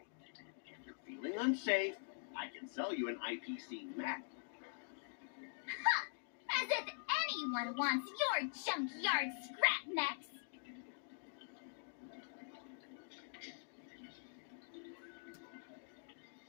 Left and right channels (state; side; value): silent; right; digital silence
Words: If you're feeling unsafe, I can sell you an IPC mech. As if anyone wants your junkyard scrap mechs.